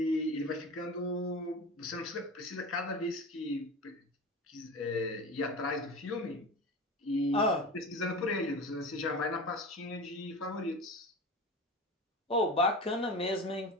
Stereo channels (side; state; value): both; normal; correlation 0.30